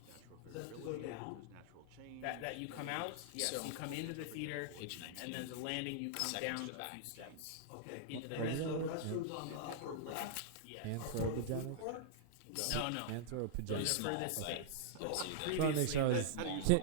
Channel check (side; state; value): both; different; correlation -0.01